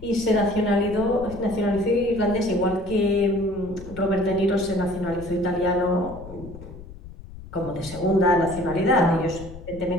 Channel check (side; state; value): left; noise; rumble, 15 dB below the sound